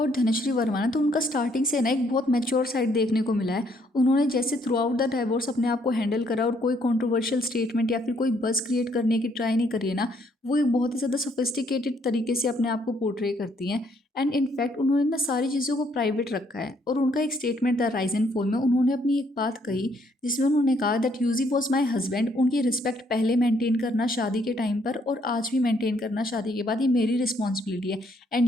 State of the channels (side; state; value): both; normal; correlation 0.69